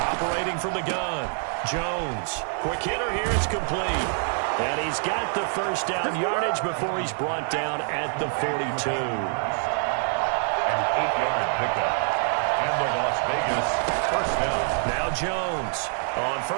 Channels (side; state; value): left; silent; 56 dB below the other